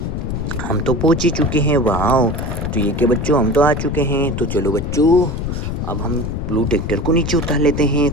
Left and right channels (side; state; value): left; noise; rumble, 3 dB below the sound